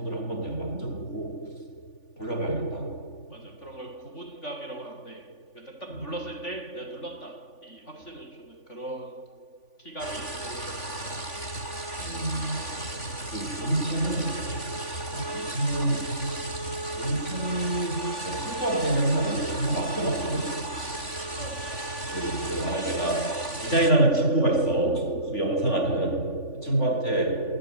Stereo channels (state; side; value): late; right; 3.5 ms